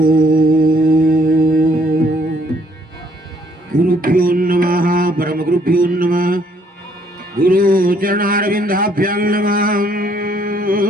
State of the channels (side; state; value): both; normal; correlation 0.66